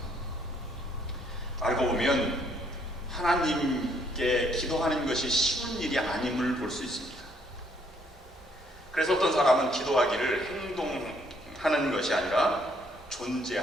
알고 보면 하나님께 기도하는 것이 쉬운 일이 아님을 볼 수 있습니다. 그래서 어떤 사람은 기도하기를 행동하는 것이 아니라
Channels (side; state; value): both; normal; correlation 0.68